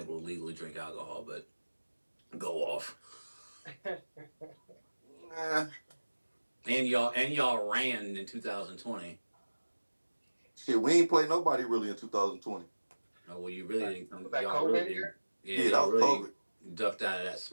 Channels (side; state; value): both; inverted; correlation -1.00